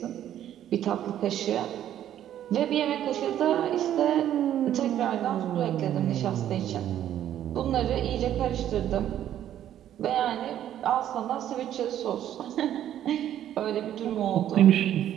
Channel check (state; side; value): quieter; left; 11.2 dB